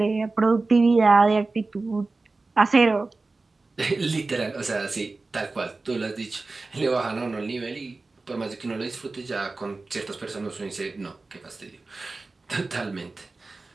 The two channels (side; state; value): left; quieter; 3.5 dB